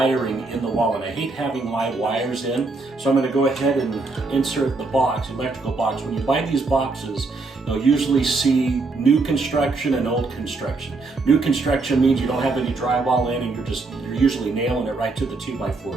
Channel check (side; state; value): left; quieter; 3.6 dB